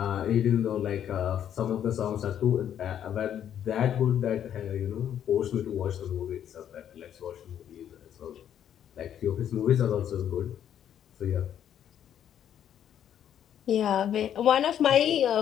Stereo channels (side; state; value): right; quieter; 9.8 dB